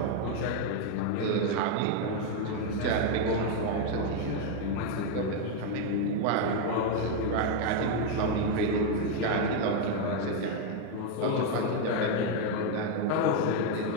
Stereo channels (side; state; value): both; different; correlation 0.01